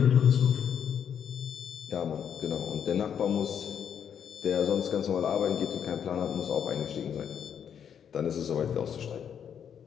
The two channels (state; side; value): quieter; right; 8.2 dB